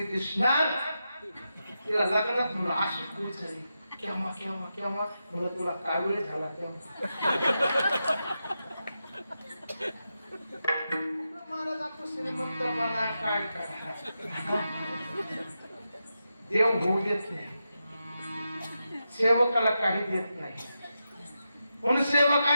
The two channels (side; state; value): both; inverted; correlation -0.88